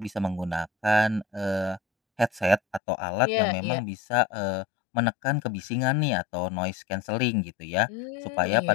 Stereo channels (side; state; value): right; drops out; at 2.8 s